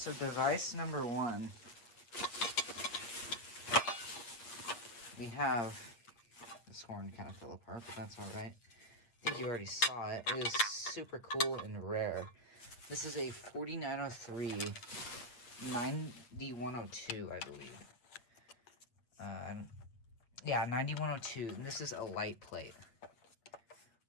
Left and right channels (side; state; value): right; late; 8.5 ms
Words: device number one. We have, this horn kind of fell apart, but that's alright. I think you already saw it. It is super cool and rare. This is a 4903 9102, I believe. Yeah, 9102, and this is a light plate,